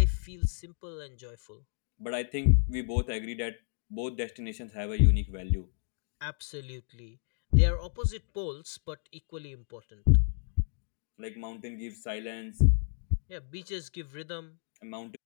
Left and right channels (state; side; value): silent; right; digital silence